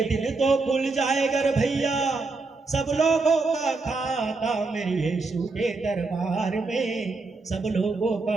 तो खुल जाएगा रे भैया सब लोगों का खाता, मेरे यीशु के दरबार में सब लोगों का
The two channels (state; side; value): quieter; left; 3.7 dB